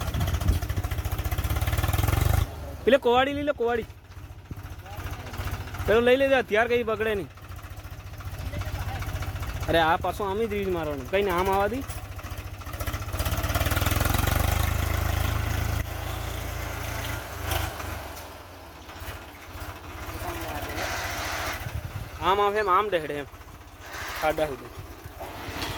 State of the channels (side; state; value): both; identical; correlation 1.00